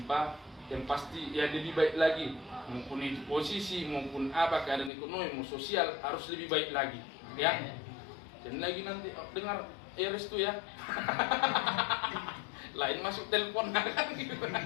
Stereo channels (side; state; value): right; drops out; at 4.9 s